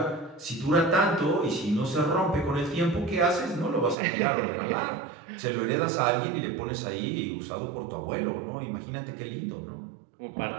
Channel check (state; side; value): drops out; left; at 4.0 s